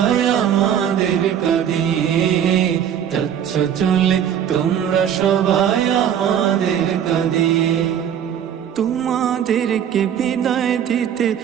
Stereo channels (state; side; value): quieter; left; 9.2 dB